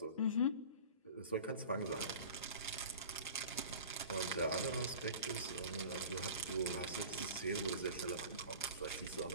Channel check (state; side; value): inverted; both; correlation -0.39